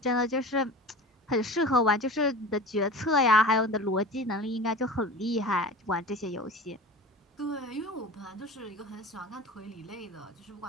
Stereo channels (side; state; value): both; normal; correlation 0.34